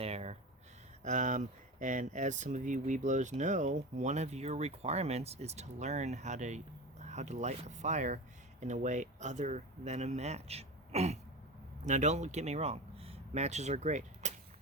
Um, and as some of you Webelos know, one of your requirements is to learn how to light a fire in a way other than a match. Now don't get me wrong, matches are great.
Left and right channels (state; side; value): normal; both; correlation 0.26